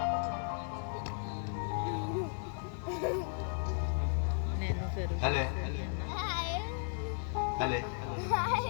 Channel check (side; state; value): right; silent; 54 dB below the other